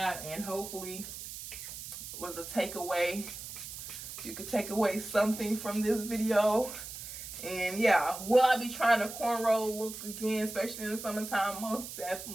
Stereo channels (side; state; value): right; noise; hiss, 10 dB below the sound